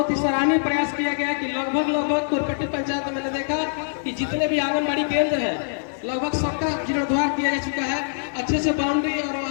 ही सराहनीय प्रयास किया गया कि लगभग कोरपेटी पंचायत में मैंने देखा कि जितने भी आंगनबाड़ी केंद्र है लगभग सबका जीर्णोद्धार किया जा चुका है। अच्छे से बाउंड्री और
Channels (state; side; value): silent; right; digital silence